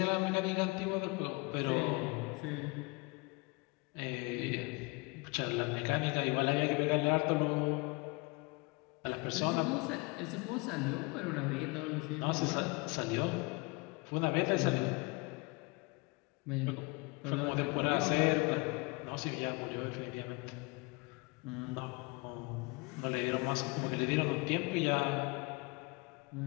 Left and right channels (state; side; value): quieter; right; 27.8 dB